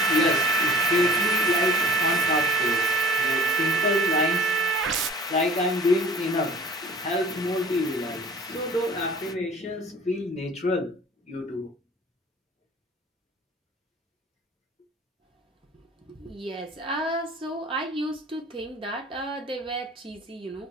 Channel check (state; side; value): normal; both; correlation 0.45